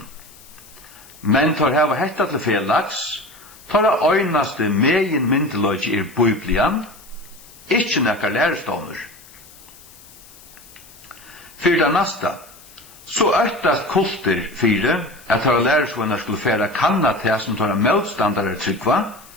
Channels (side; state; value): left; noise; hiss, 22 dB below the sound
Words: Men tar hava hetta til felags, tar øynaste megin myndiløgi biblian, ikkje nekkar lærestånur. Fyrir det nasta, så øktast kulter fyrir at tar læresvunnar skulle færa kanna til som tar motstandare tryggva,